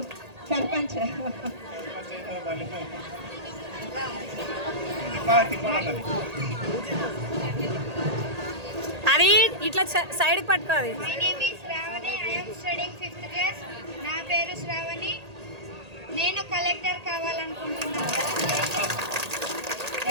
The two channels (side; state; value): left; late; 1.8 ms